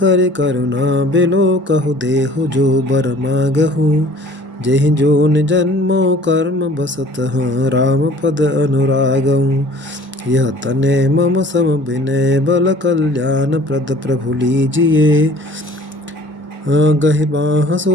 करुणा बिलो, कहु देहु जो बर मागहु। जेहि जोन जन्मो कर्म बसत, राम पद अनुरागहु। यह तने मम सम विनय, बल कल्याण प्रद प्रभु लीजिए। गहि बाह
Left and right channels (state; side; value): normal; both; correlation 0.50